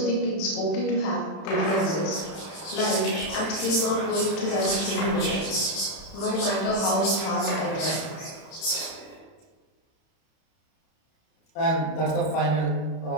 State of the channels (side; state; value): right; late; 31 ms